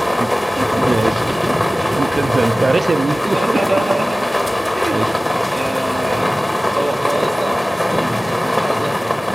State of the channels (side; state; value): both; normal; correlation 0.97